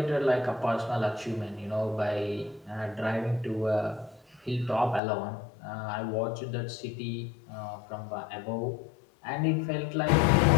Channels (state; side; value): drops out; right; at 5.0 s